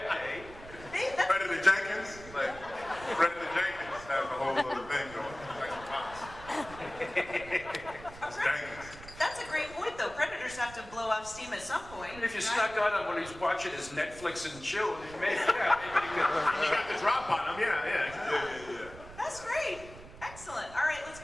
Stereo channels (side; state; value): right; noise; rumble, 17 dB below the sound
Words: day. Predator Jenkins. Like, Predator Jenkins has a whole other thing going. Like It's Jenkins. That's a great point, though. Predators have to blow off steam at some point. And if you snuck on him when he's watching his Netflix and chill, maybe you could. You got the drop on him, yeah. That's great. Excellent. All right, let's